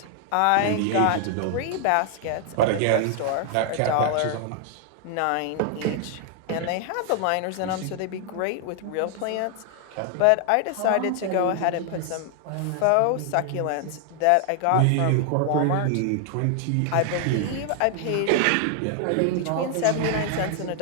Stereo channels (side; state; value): both; different; correlation 0.00